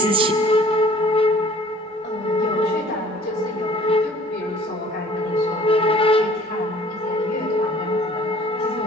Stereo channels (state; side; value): normal; both; correlation 0.52